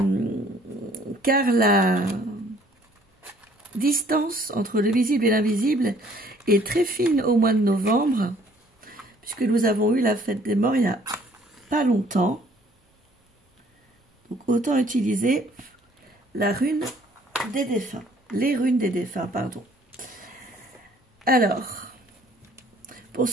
la distance entre le visible et l'invisible est très fine au mois de novembre, puisque nous avons eu la fête des morts il y a pas longtemps. Donc autant utiliser la rune des défunts, les runes des défunts, pardon. Alors, pour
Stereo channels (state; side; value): normal; both; correlation 0.59